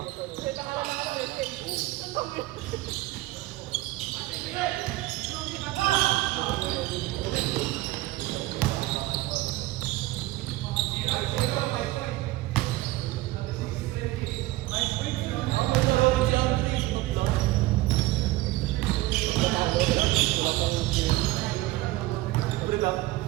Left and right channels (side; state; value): left; quieter; 18.1 dB